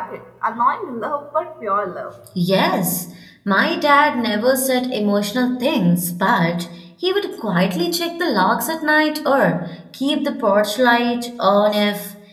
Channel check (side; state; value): both; identical; correlation 1.00